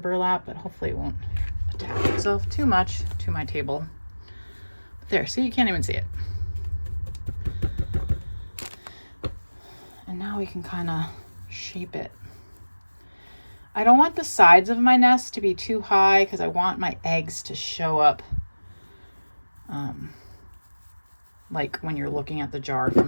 but hopefully it won't attach itself too much to my table. But there, see, you can't even see it. And now we can kind of shape it. I don't want the sides of my nest to be too high because I want my eggs to show up like when you're looking at the jar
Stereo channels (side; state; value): both; inverted; correlation -1.00